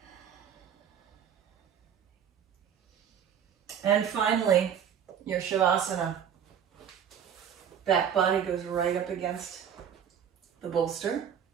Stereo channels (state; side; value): quieter; left; 8.5 dB